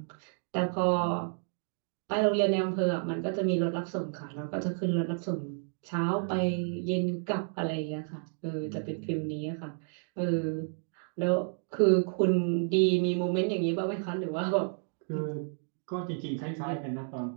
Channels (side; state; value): left; silent; 57 dB below the other